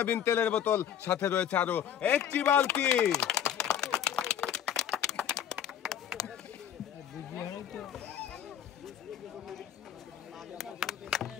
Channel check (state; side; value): quieter; right; 9.5 dB